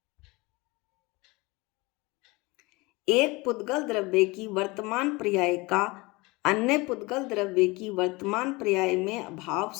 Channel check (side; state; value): right; quieter; 24.0 dB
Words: की वर्तमान पर्याय का अन्य पुद्गल द्रव्य की वर्तमान पर्याय में भाव